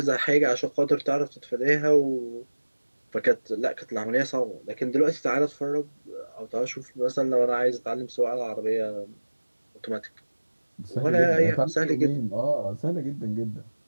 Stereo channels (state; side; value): inverted; both; correlation -1.00